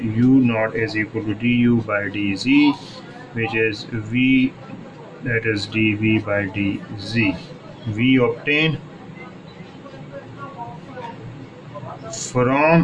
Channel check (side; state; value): both; identical; correlation 1.00